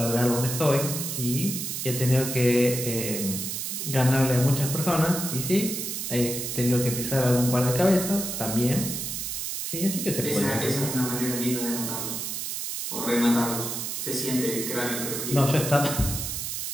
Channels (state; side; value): noise; right; hiss, 4 dB below the sound